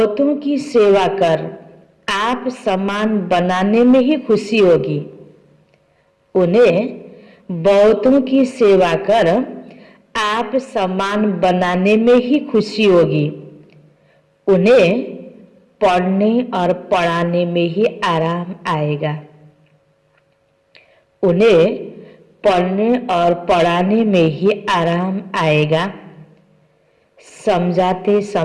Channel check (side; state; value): both; identical; correlation 1.00